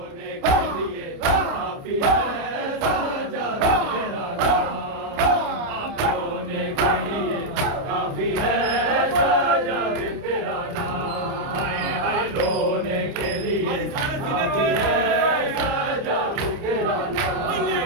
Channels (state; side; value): late; left; 29 ms